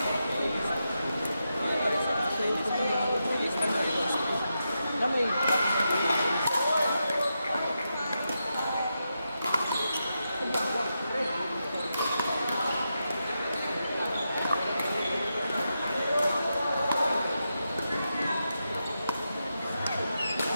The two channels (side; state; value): both; inverted; correlation -0.87